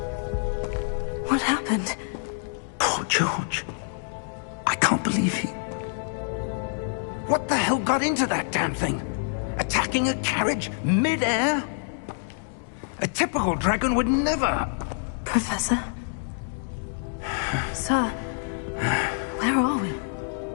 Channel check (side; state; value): right; silent; digital silence